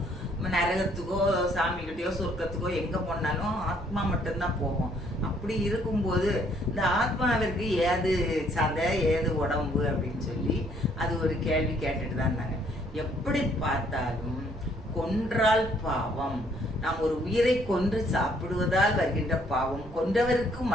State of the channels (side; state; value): both; normal; correlation 0.65